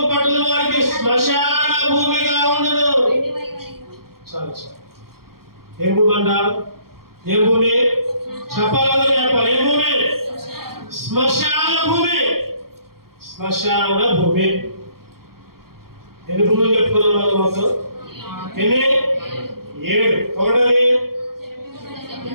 పట్టణం వారికి శ్మశాన భూమిగా ఉండును. చాలు. ఏం భూమి అంట? ఏం భూమి? చెప్పాలి. ఏం భూమి? శ్మశాన భూమి. ఎన్ని భూములు చెప్పుకున్నాం మొత్తం? ఎన్ని? 7. ఒకటది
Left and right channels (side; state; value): left; late; 0.93 ms